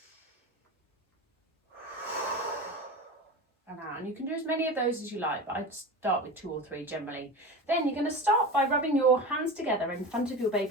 and out. And you can do as many of those as you like, but I'd start with 2 or 3 generally. Then you're going to start by rubbing your hands together in front of your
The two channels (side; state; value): both; normal; correlation 0.28